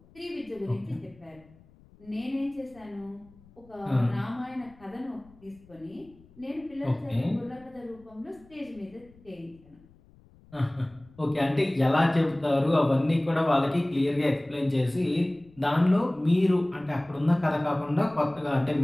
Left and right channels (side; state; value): left; noise; rumble, 27 dB below the sound